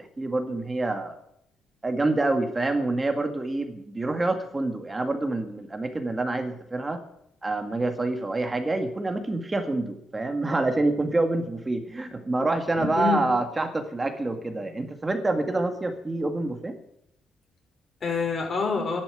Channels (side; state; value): both; normal; correlation 0.90